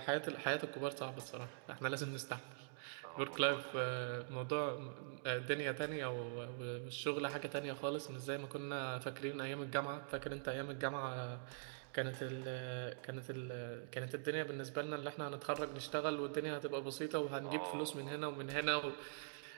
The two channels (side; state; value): left; silent; digital silence